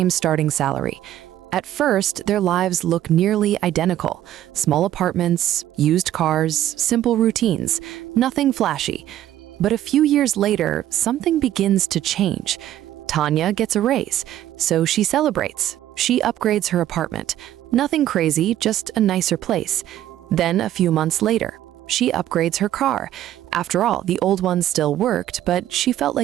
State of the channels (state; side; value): quieter; left; 12.7 dB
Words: starting salary. At first, their lives look nearly identical. Small apartments, used cars, simple routines, nothing flashy. But a few years later, something begins to change. Tanya gets a raise, so she celebrates. She upgrades her apartment. Nothing crazy, just a nicer place. Then a few months later, she upgrades her car. After all, the old one still worked, but she felt